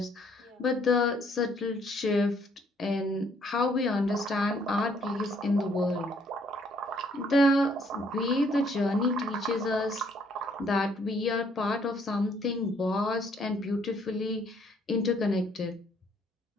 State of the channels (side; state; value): both; normal; correlation 0.66